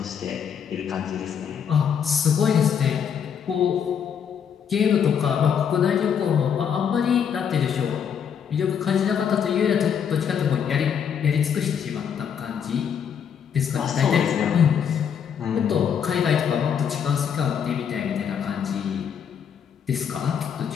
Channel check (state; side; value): quieter; right; 7.7 dB